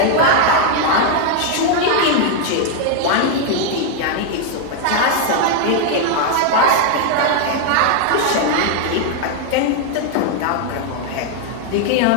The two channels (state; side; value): different; both; correlation 0.00